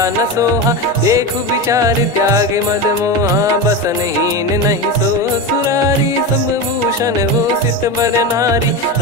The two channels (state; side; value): normal; both; correlation 0.20